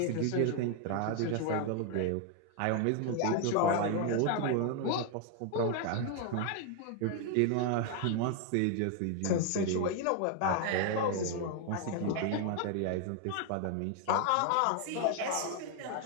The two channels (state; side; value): different; both; correlation 0.00